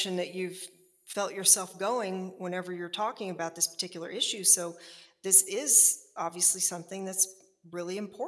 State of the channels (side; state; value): both; identical; correlation 1.00